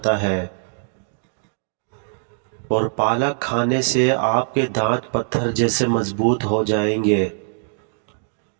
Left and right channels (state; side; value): silent; left; digital silence